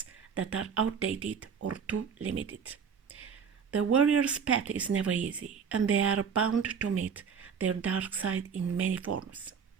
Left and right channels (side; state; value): left; quieter; 6.6 dB